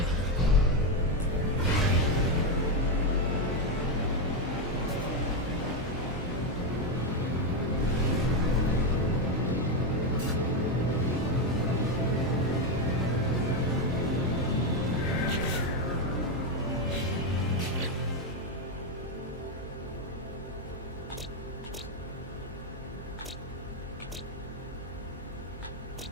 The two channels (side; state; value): both; normal; correlation 0.07